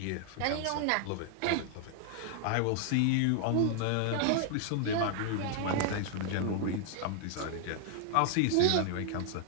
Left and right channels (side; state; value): both; different; correlation 0.00